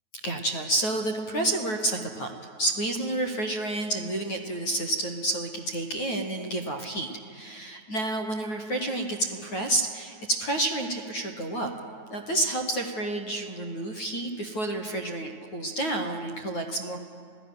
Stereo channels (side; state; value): right; late; 9.3 ms